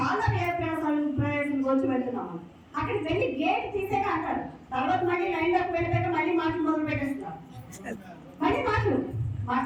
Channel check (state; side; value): identical; both; correlation 1.00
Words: ప్రయాసాలు వచ్చి వెళ్తున్నాము. అక్కడికి వెళ్ళి గేట్ తీసాక అంటారు. తర్వాత మళ్ళీ లైన్ లోకి వెళ్ళాక మళ్ళీ మాటలు మొదలు పెట్టేస్తున్నారు. మళ్ళీ మాటలు